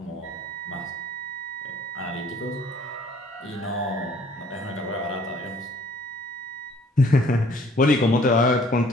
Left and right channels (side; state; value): both; normal; correlation 0.57